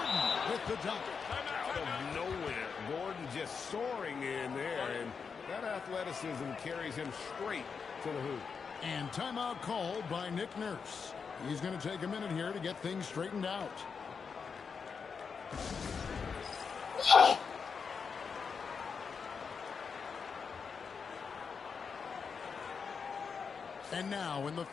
with the dunk. Out of nowhere, Gordon just soaring in there, and that athleticism carries him straight to the hoop. And timeout called by Nick Nurse. He's going to take a minute here to get things straightened out. And now, in the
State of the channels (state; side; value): quieter; right; 5.8 dB